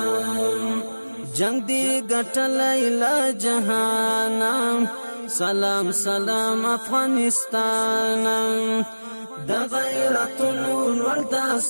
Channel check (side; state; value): both; inverted; correlation -1.00